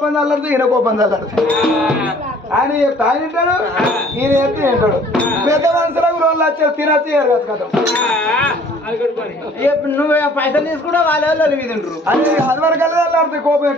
చల్లరుతుంది ఈయన కోపం చల్లరుతుంది. ఆయన తాగినాడు ఈయన చెప్తే తింటాడు. పెద్ద మనుషులకు ₹2,00,000 తినచ్చు ఎరగచ్చు కదా. నువ్వు పైసలు తీసుకుంటే వాళ్ళ తింటారు. అది వరకల్లా చల్లారుతుంది కోపం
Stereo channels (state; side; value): normal; both; correlation 0.54